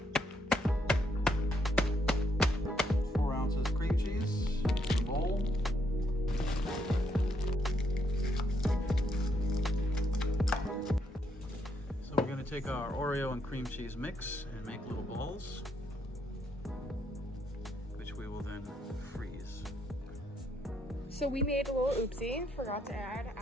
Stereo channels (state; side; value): normal; both; correlation 0.75